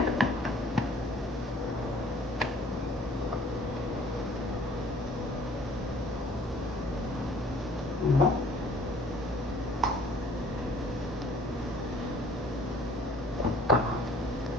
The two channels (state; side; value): normal; both; correlation 0.54